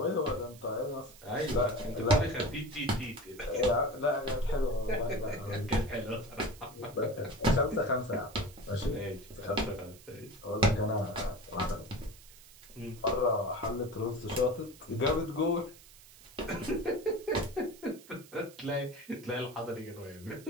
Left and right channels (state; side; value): noise; right; hiss, 21 dB below the sound